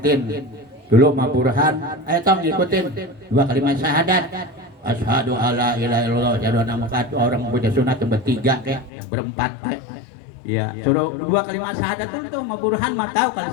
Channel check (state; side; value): drops out; right; at 8.9 s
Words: dulu Ma Burhan, tong ngikutin 2 kalimat syahadat. Asyhadu alla ilaha illallah, asyhadu anna Muhammad, orang punya sunat bertiga kayak berempat kayak. Ya, suruh 2 kalimat syahadat itu mah Burhan mah tahu kalau